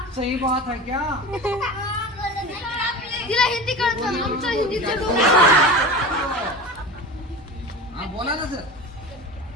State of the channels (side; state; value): both; normal; correlation 0.31